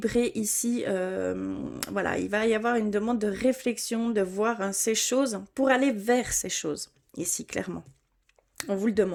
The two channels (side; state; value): both; identical; correlation 1.00